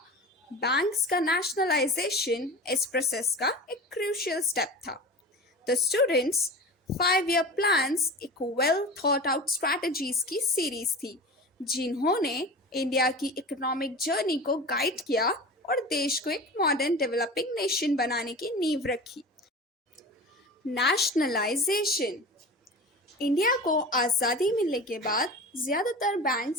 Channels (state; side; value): normal; both; correlation 0.33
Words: बैंक्स का नेशनलाइजेशन इस प्रोसेस का एक क्रूशियल स्टेप था। द स्टूडेंट्स 5 ईयर प्लान्स एक वेल थॉट आउट स्ट्रैटेजीज की सीरीज थी, जिन्होंने इंडिया की इकोनॉमिक जर्नी को गाइड किया और देश को एक मॉडर्न डेवलपिंग नेशन बनाने की नींव रखी। नेशनलाइजेशन। इंडिया को आज़ादी मिलने के बाद ज़्यादातर